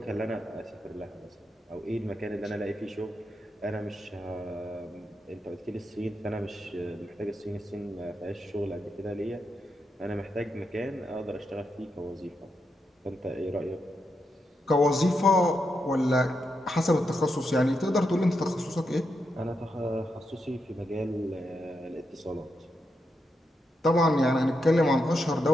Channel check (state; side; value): normal; both; correlation 0.84